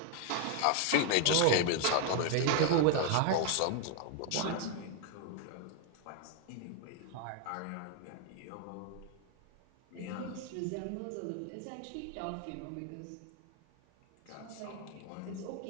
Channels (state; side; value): different; both; correlation 0.01